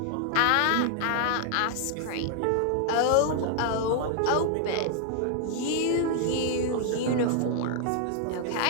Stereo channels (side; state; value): both; different; correlation 0.00